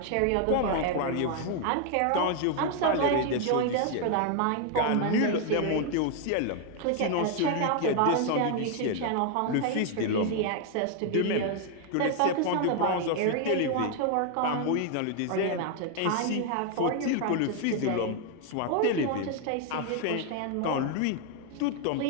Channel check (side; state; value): both; different; correlation 0.00